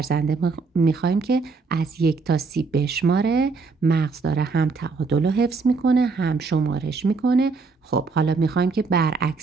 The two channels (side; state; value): left; quieter; 4.4 dB